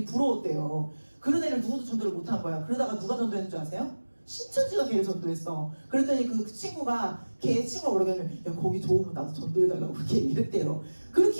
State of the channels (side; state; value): both; inverted; correlation -1.00